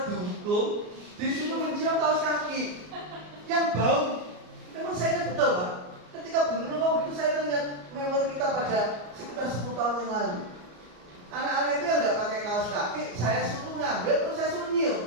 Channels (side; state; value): left; late; 34 ms